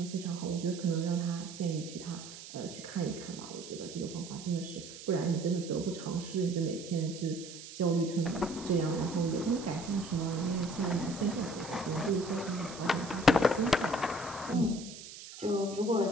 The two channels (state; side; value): noise; right; hiss, 14 dB below the sound